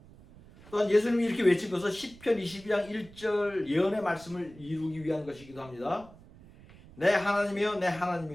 또한 예수님이 이렇게 외친 것은 시편 22장 1절 예언의 말씀을 이루기 위한 것이기도 합니다. 내 하나님이여 내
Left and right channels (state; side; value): noise; right; rumble, 21 dB below the sound